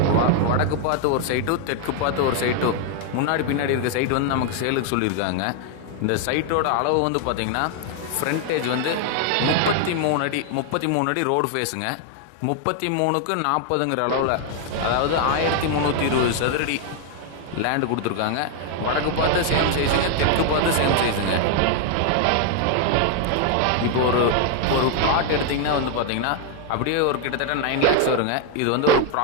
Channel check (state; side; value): different; both; correlation 0.00